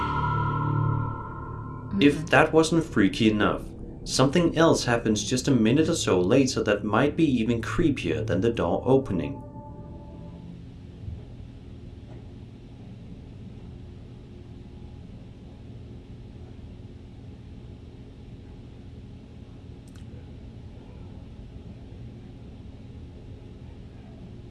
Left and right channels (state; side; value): identical; both; correlation 1.00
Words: If that wasn't freaky enough, something else happens just a minute or so later that might be even creepier than the door opening.